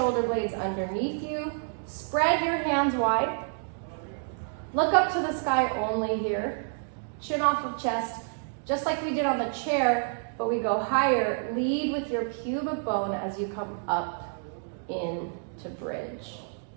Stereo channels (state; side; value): silent; left; digital silence